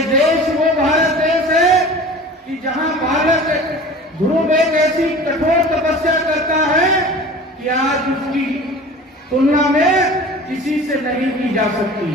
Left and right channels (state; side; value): normal; both; correlation 0.40